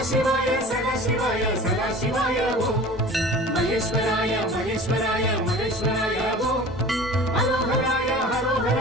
சிவாய சதா சிவாய சதா சிவாய ஓம் மகேஸ்வராய மகேஸ்வராய மகேஸ்வராய ஓம் ஹரோஹராய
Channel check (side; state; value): both; normal; correlation 0.41